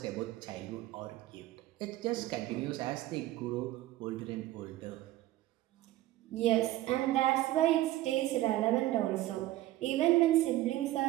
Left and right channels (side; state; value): left; quieter; 15.7 dB